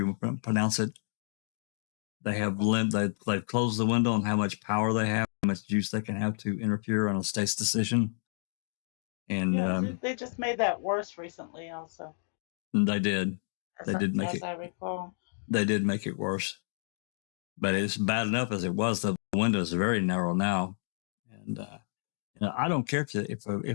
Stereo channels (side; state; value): right; silent; digital silence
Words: pronounce it. They have they've closed the window on how much power they have, how much juice they can have to interfere on a state's decision. And they just made that worse recently, also. They did. They did make it. As I recall. They did make it worse. but it's bad enough as it was. The window is very narrow now, and I don't care if